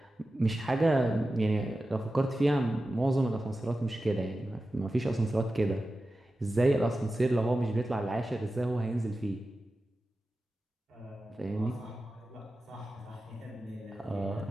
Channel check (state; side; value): normal; both; correlation 0.93